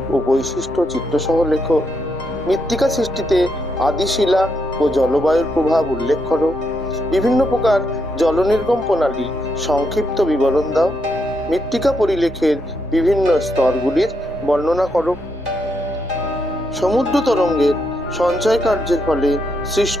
ও বৈশিষ্ট্য চিত্রসহ লেখো। মৃত্তিকা সৃষ্টিতে আদিশিলা ও জলবায়ুর প্রভাব উল্লেখ করো। বিভিন্ন প্রকার জলনির্গম প্রণালী সংক্ষিপ্ত বিবরণ দাও। মৃত্তিকা পরিলেখের বিভিন্ন স্তরগুলির বর্ণনা করো। সমুদ্র তরঙ্গের সঞ্চয় কার্যের ফলে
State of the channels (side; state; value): both; normal; correlation 0.79